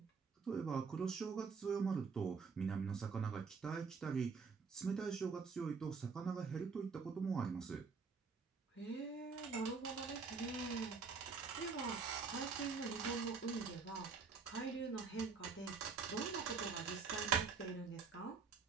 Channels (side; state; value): left; quieter; 5.1 dB